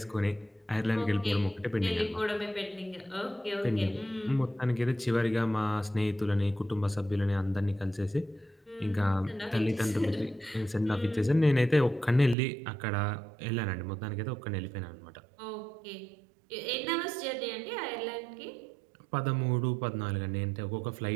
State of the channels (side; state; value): left; drops out; at 12.4 s